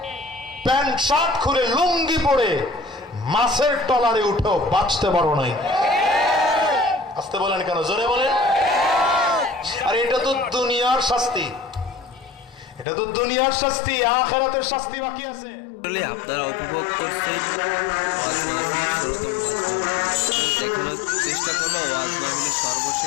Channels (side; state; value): right; drops out; at 12.9 s